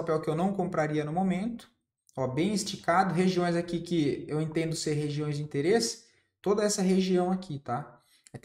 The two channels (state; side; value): identical; both; correlation 1.00